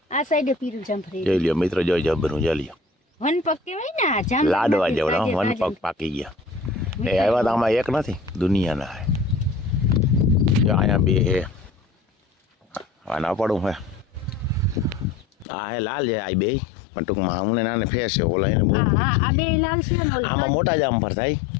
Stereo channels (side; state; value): right; drops out; at 15.5 s